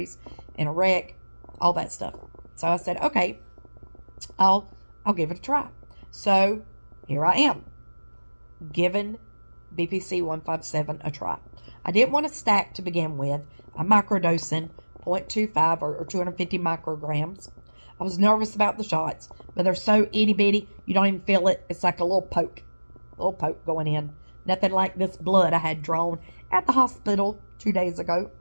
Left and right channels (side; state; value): both; inverted; correlation -1.00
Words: in a wreck, all that stuff. So I said, okay, I'll give it a try. So here I am, giving BPC 157 a try. I didn't want to stack to begin with. I'm microdosing 0.25 or 250 micrograms. I was nervous about the shots, but they're so itty bitty, you don't even feel it. It's like a little poke going in. Nothing like this blood I had drawn at the hospital 2 days ago.